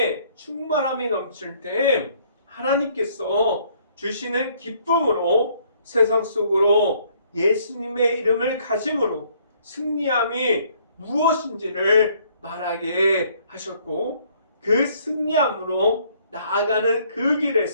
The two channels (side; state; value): both; inverted; correlation -0.63